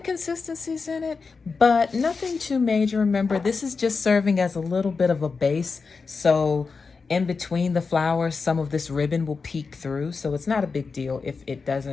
in it, but nothing too major. Remember, this is just serving as a little bit of a base. So in between the flowers, some of this ribbon will peek through. So it's not a big deal if it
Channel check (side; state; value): right; quieter; 4.7 dB